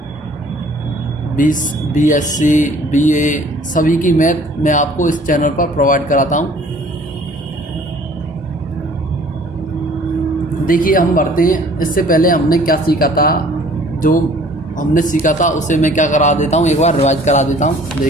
BSc, BA, सभी की मैथ मैं आपको इस चैनल पर प्रोवाइड कराता हूँ। देखिए, हम बढ़ते हैं। इससे पहले हमने क्या सीखा था, जो हमने सीखा था उसे मैं क्या करा देता हूँ, एक बार रिवाइज करा देता हूँ।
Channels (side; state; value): both; normal; correlation 0.54